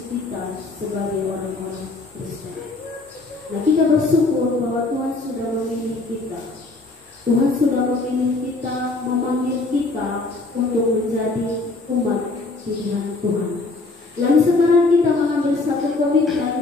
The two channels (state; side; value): quieter; right; 3.4 dB